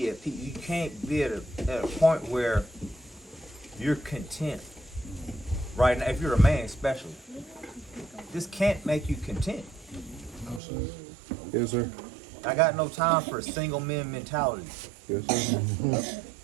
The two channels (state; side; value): drops out; left; at 10.6 s